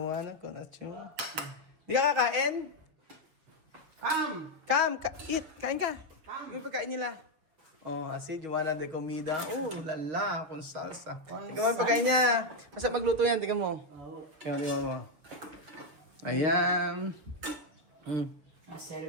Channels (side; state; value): left; late; 6.9 ms